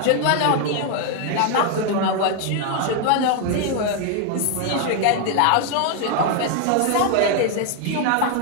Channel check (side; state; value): both; different; correlation 0.01